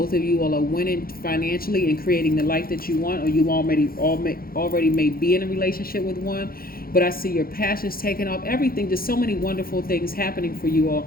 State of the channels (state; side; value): late; right; 0.43 ms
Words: of you all are winning financially and creating the life that you want, or you already may be in a relationship with one. But I see your passions taking off, everything, just so many wonderful things happening for you all.